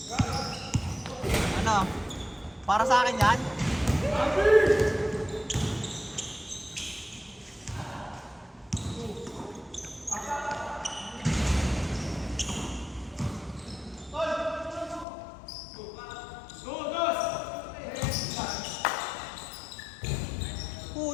Ano? Para sa akin yan?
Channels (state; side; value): drops out; right; at 15.1 s